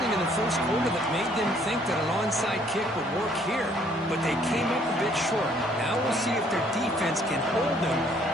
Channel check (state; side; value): normal; both; correlation 0.63